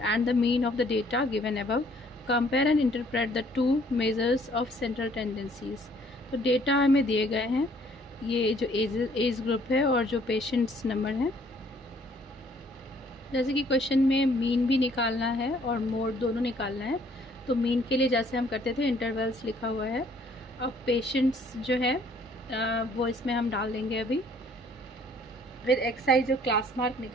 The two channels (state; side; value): normal; both; correlation 0.61